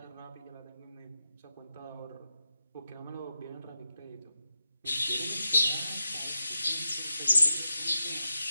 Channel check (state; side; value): inverted; both; correlation -0.88